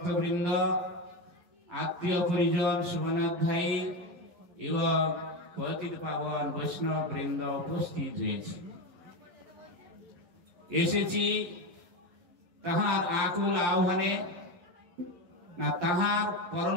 আত্মীয় পরিজন, শুভনাধ্যায়ী এবং পতিত পাবন বৈষ্ণব বৃন্দ উপস্থিত হয়েছে। এসেছি তাহার আকুল আহ্বানে, না তাহার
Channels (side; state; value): left; late; 11 ms